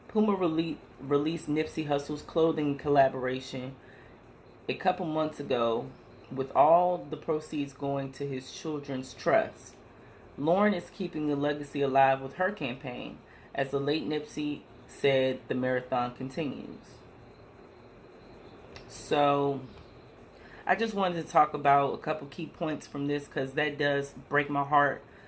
Puma released Nipsey Hussle's clothing collaboration a couple months ago, with all the proceeds going to his children's trust. Lauren is keeping the legacy alive with her campaign. As the late Nipsey said, the marathon continues. So, I just wanted to talk about a couple key points from this, because that does break my heart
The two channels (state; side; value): identical; both; correlation 1.00